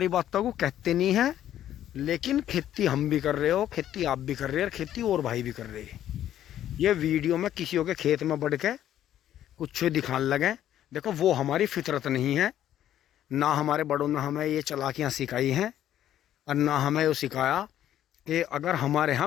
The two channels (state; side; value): quieter; right; 11.6 dB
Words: बातों को कहते नहीं हैं, लेकिन खेती हम भी कर रहे हो, खेती आप भी कर रहे हैं, और खेती और भाई भी कर रहे हैं। ये वीडियो में किसी के खेत में बढ़ के कुछ दिखाने लगे, देखो वो हमारी फितरत नहीं है। ना हमारे बड़ों ने हमें ये चालाकियाँ सिखाई हैं, और ना हमें ये सिखाया कि अगर हमारे यहाँ